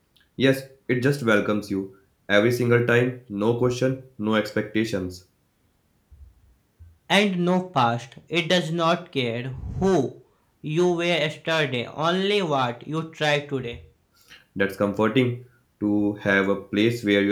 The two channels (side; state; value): both; identical; correlation 1.00